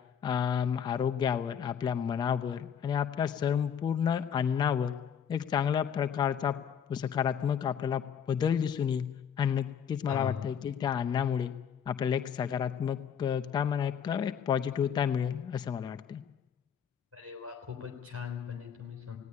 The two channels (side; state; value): right; quieter; 7.9 dB